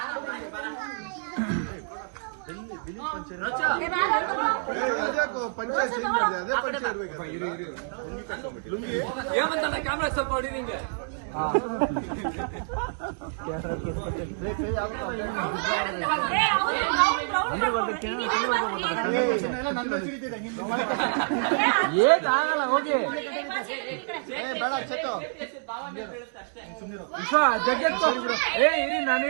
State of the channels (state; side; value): silent; left; digital silence